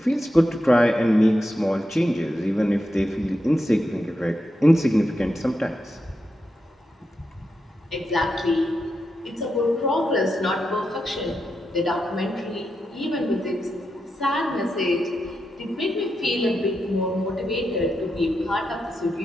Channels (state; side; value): normal; both; correlation 0.86